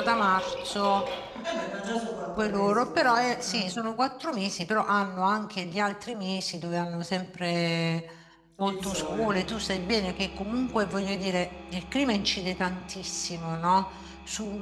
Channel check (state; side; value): identical; both; correlation 1.00